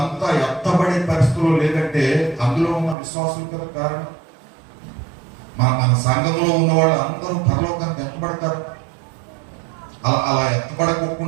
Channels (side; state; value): left; drops out; at 3.0 s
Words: ఎత్తబడే పరిస్థితుల్లో లేదంటే అందులో ఉన్న విశ్వాసులు కదా కారణం. మన సంఘంలో ఉన్న వాళ్ళు అందరూ పరలోకానికి ఎత్తబడతారు. అలా